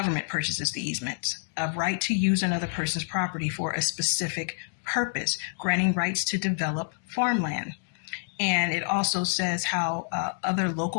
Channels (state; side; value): silent; right; digital silence